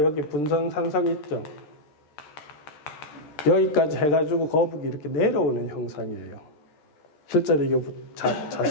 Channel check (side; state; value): right; late; 13 ms